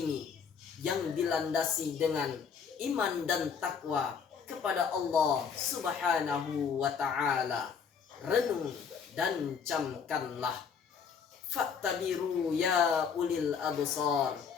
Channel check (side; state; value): right; quieter; 6.5 dB